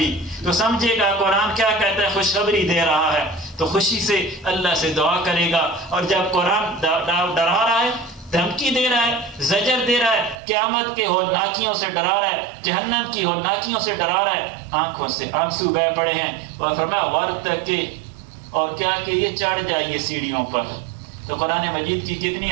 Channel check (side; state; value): left; drops out; at 10.4 s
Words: تو سمجھے گا قرآن کیا کہتا ہے، خوشخبری دے رہا ہے، تو خوشی سے اللہ سے دعا کرے گا. اور جب قرآن ڈرا رہا ہے، دھمکی دے رہا ہے، زجر دے رہا ہے، قیامت کے ہولناکیوں سے ڈرا رہا ہے، جہنم کی ہولناکیوں سے ڈرا رہا ہے، آنکھوں سے آنسو بہہ پڑے ہیں. اور فرمایا ورتقی، اور کیا کہ یہ چڑھ جائیے سیڑھیوں پر. تو قرآن مجید کی کتنی